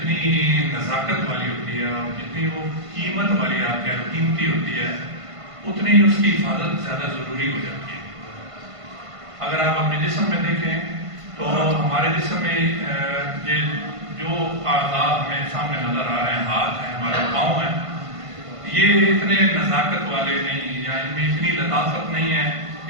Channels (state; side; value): late; left; 1.5 ms